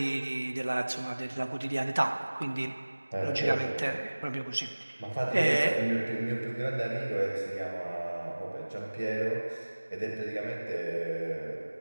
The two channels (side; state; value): both; inverted; correlation -1.00